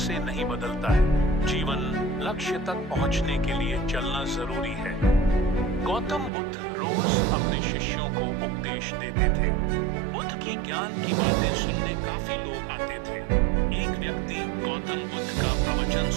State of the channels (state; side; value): drops out; left; at 6.3 s